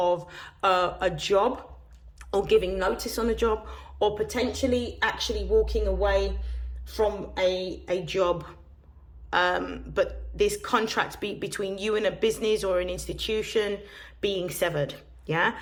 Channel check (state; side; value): identical; both; correlation 1.00